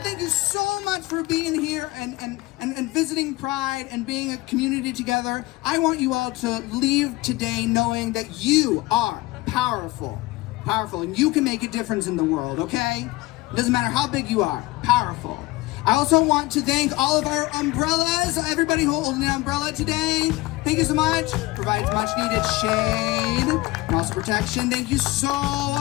Thank you so much for being here and visiting Pride and being a community together. I want you all to leave today knowing that you are powerful, and you can make a difference in the world, okay? It doesn't matter how big you are, powerful. I also want to thank all of our umbrellas, everybody holding an umbrella today. Thank you so much. Provides much needed shade and also protection. Thank you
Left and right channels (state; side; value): quieter; right; 20.1 dB